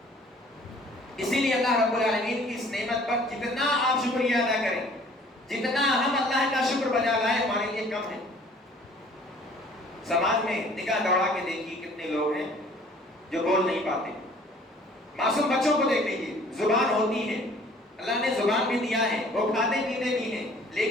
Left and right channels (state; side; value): normal; both; correlation 0.54